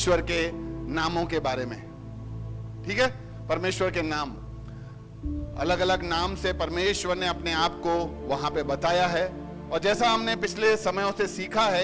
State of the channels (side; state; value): both; identical; correlation 1.00